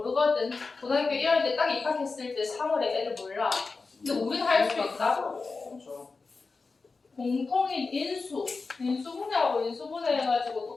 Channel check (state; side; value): quieter; right; 4.2 dB